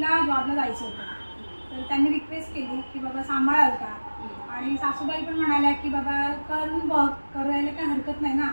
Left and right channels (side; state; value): both; inverted; correlation -1.00